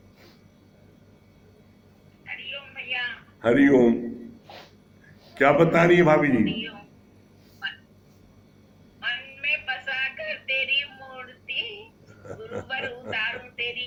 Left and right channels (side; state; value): both; identical; correlation 1.00